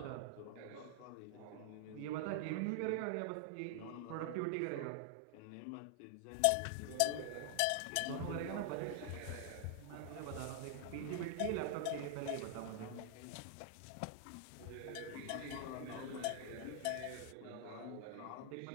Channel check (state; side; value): different; both; correlation 0.00